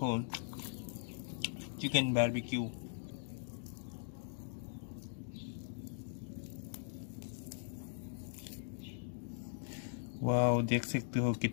chicken barbecue. वाह, देख सकते हो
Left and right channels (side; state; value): right; silent; digital silence